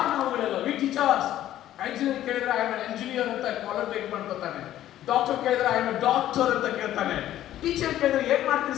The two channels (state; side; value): quieter; right; 12.8 dB